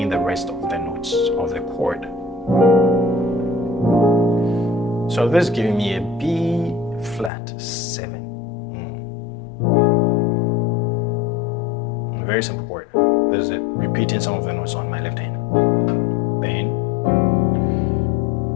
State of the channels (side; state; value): right; drops out; at 7.3 s